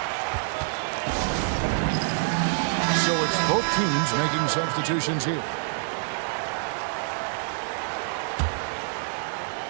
So it's both teams making substitutions here.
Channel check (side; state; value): left; silent; digital silence